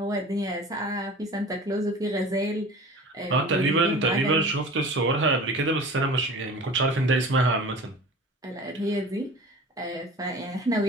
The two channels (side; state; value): both; normal; correlation 0.39